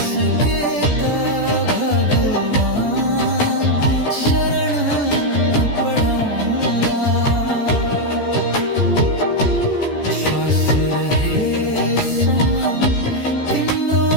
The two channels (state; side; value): late; right; 14 ms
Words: त भगवान शरण पढाउँला श्वास रहेसम्म तिम्रो